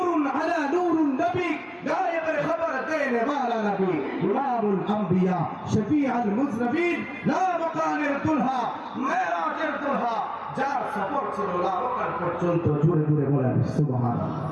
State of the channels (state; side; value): identical; both; correlation 1.00